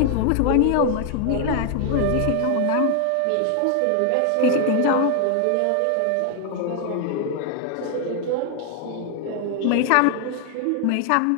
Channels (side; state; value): both; different; correlation 0.00